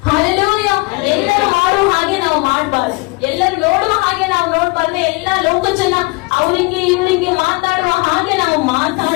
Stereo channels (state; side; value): quieter; right; 26.4 dB